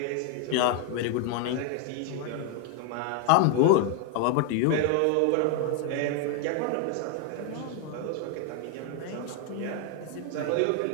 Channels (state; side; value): different; both; correlation 0.00